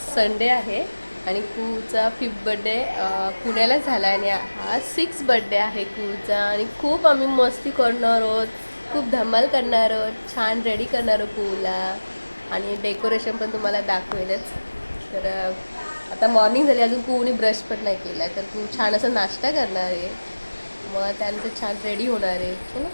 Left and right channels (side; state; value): both; inverted; correlation -1.00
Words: संडे आहे आणि कूचा 5th बड्डे पुण्याला झाला आणि हा 6th बड्डे आहे कूचा. आणि खूप आम्ही मस्ती करणार आहोत, खूप धमाल करणार आहोत, छान रेडी करणार आहोत कूला. आणि डेकोरेशन पण तुम्हाला दाखवेलच. तर आता मॉर्निंग झाली, अजून कूने ब्रश पण नाही केला, तर कू छान असं नाश्ता करणार आहे. मग त्यानंतर छान रेडी होणार आहे. चलो